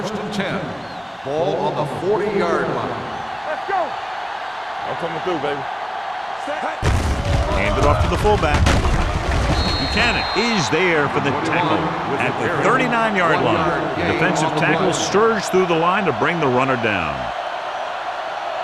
and 10. Ball on the 40-yard line. Let's go. I'm coming through, baby. Hand it off to the fullback. Buchanan is there for the tackle at the 39-yard line. The defensive tackle surged through the line to bring the runner down.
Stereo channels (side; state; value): both; identical; correlation 1.00